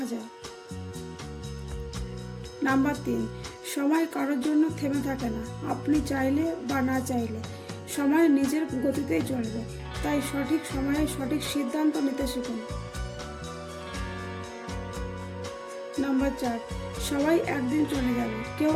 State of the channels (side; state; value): both; identical; correlation 1.00